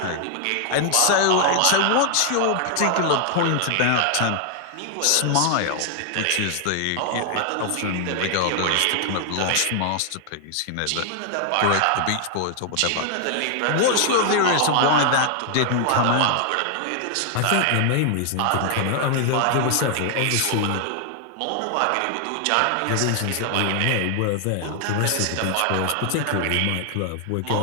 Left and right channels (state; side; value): different; both; correlation 0.00